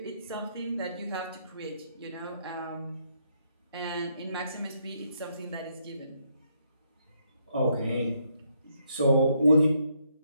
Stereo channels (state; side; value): inverted; both; correlation -0.74